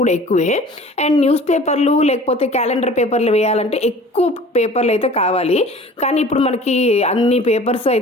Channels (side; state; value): both; normal; correlation 0.45